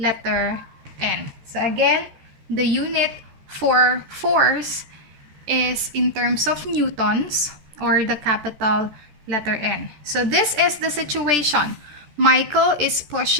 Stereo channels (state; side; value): late; left; 14 ms